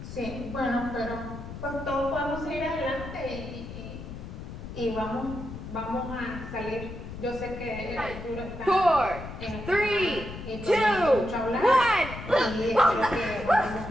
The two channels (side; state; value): left; noise; rumble, 10 dB below the sound